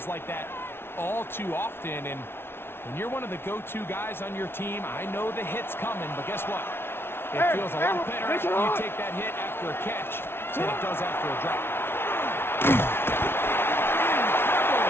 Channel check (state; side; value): late; right; 0.11 ms